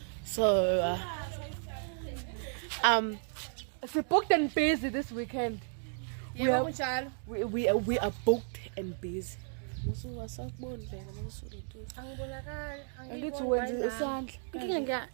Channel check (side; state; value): left; silent; 55 dB below the other